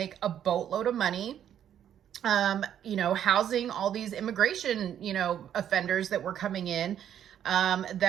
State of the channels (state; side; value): quieter; left; 9.9 dB